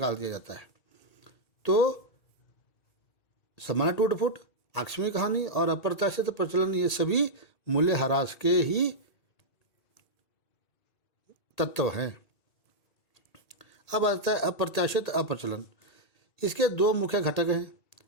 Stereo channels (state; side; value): late; right; 1.8 ms